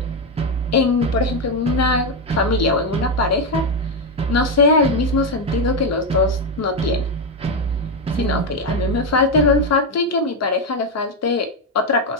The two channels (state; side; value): normal; both; correlation 0.07